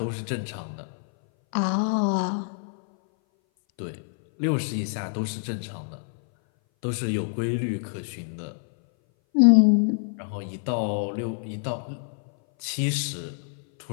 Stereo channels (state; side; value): silent; right; 58 dB below the other